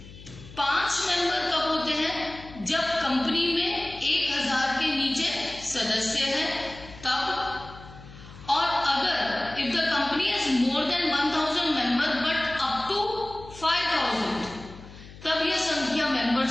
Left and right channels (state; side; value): noise; left; hum, 18 dB below the sound